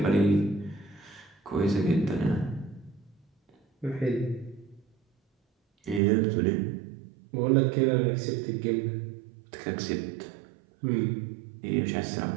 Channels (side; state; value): left; drops out; at 6.0 s